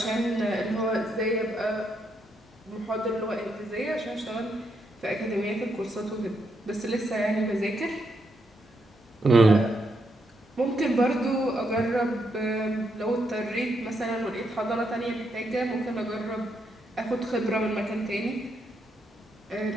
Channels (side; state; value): both; normal; correlation 0.79